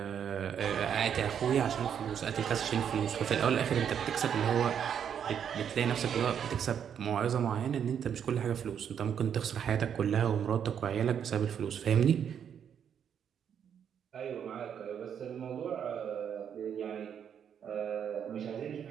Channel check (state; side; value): quieter; left; 8.3 dB